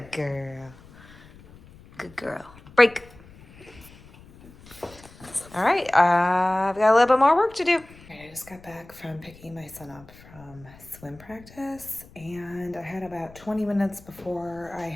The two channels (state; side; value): noise; left; rumble, 22 dB below the sound